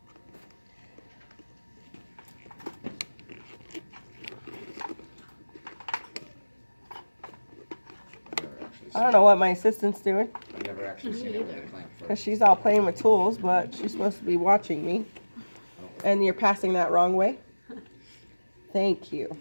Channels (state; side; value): inverted; both; correlation -1.00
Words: I don't know what my assistant's doing. I've never actually seen it with a clamp Because first. she's all playing with tools, but she's supposed to be watching me. And you're passing that wrong way. Thank you.